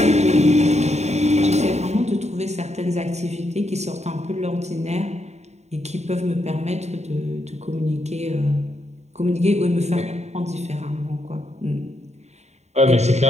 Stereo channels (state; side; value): late; left; 0.32 ms